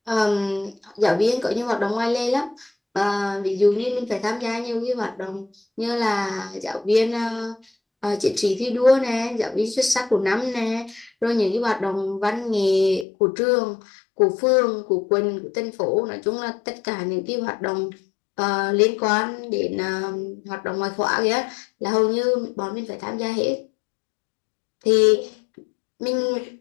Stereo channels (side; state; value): right; drops out; at 13.1 s